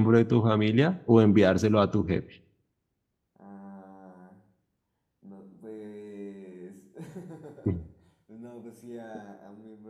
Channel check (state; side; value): identical; both; correlation 1.00